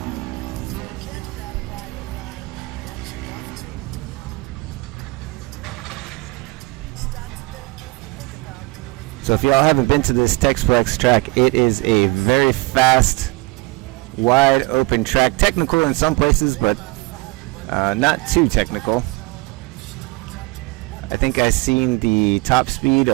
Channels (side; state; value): left; quieter; 24.4 dB